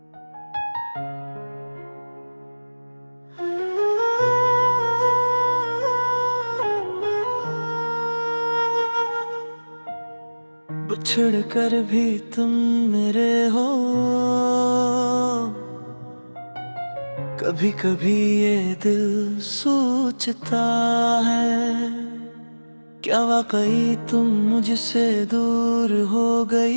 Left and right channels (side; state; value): both; inverted; correlation -1.00